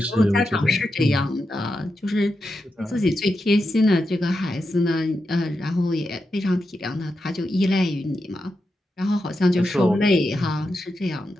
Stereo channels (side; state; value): both; normal; correlation 0.87